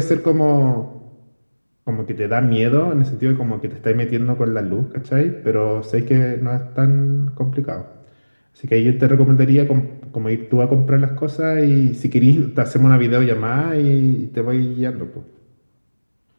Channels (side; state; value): both; inverted; correlation -1.00